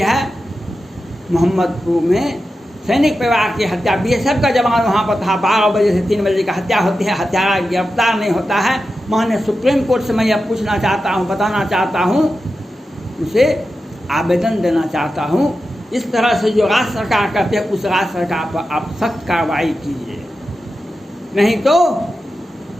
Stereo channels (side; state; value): both; normal; correlation 0.91